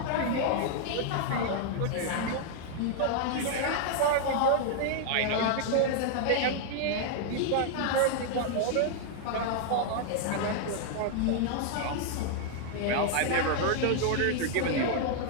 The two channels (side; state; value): both; different; correlation -0.01